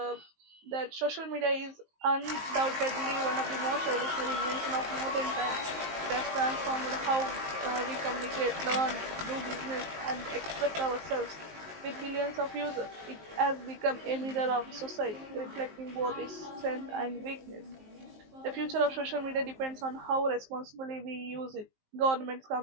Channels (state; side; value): late; left; 19 ms